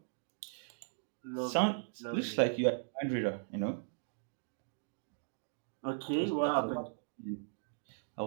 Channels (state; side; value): silent; left; digital silence